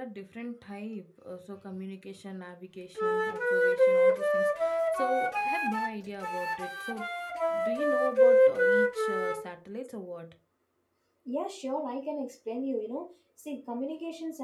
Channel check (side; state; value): both; identical; correlation 1.00